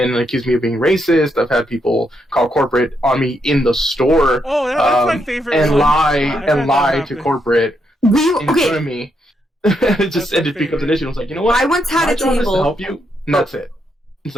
and accuse me of being racist. I've had people call corporate on me in the store. Oh, that's my favorite. And lie to corporate in front of me. It becomes an issue. I was like, you know what? I once had my a job table. is to help you, and that's it. It's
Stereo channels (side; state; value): both; normal; correlation 0.79